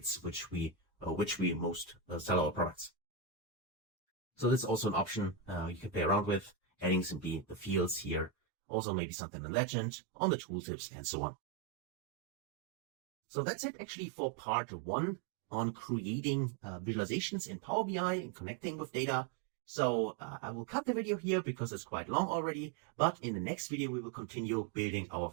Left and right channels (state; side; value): drops out; left; at 8.3 s